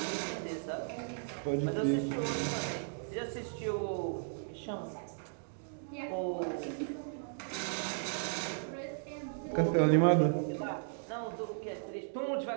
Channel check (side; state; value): left; silent; digital silence